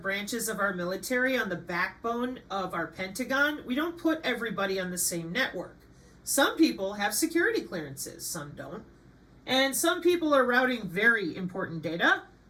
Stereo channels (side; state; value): both; identical; correlation 1.00